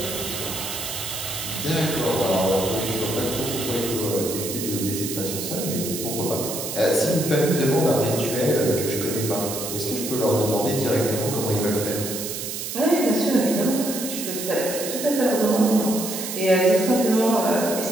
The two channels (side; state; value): right; noise; hiss, 6 dB below the sound